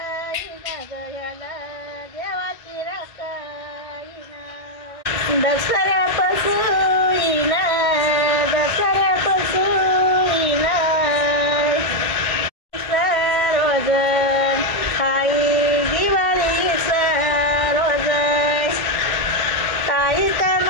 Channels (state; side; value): late; right; 1.6 ms